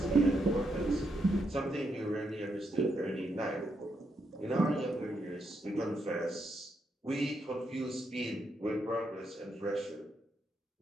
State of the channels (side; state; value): both; normal; correlation 0.80